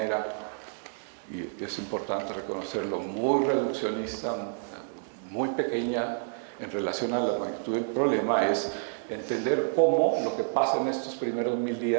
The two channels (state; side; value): silent; left; digital silence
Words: y es importante reconocerlo, muy reduccionista, muy pequeña en relación a la magnitud del problema, es entender cómo lo que pasa en estos primeros 1000